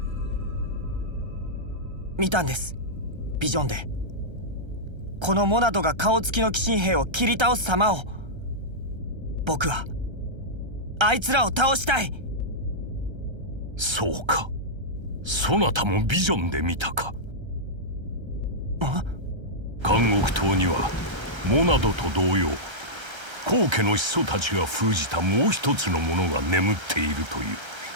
見たんです、ビジョンで。このモナドが顔つきの鬼神兵を切り倒す様を。僕はあいつらを倒したい。そうか、そなたもビジョンで見たか。監獄島にはモナドと同様高家の始祖たちが封じたもう一つのものが眠っているという。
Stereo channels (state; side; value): late; left; 1.3 ms